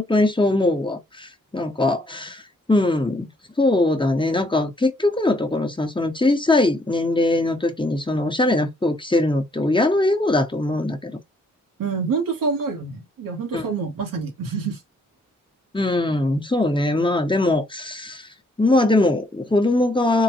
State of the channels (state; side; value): normal; both; correlation 0.68